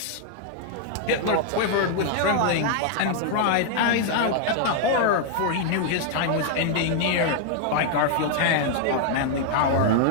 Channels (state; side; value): different; both; correlation 0.00